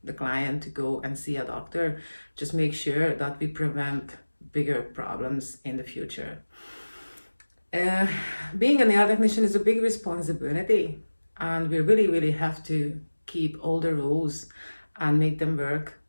the client to go and see a doctor. Just make sure that we prevent bigger problems in the future. Being a nail technician is a big responsibility, and we really have to keep all the rules and make them work,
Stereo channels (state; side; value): inverted; both; correlation -1.00